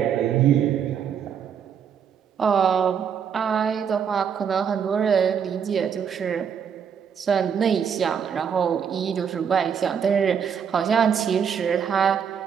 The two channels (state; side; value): quieter; left; 7.5 dB